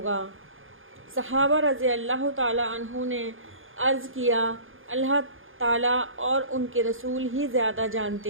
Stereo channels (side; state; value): left; late; 0.59 ms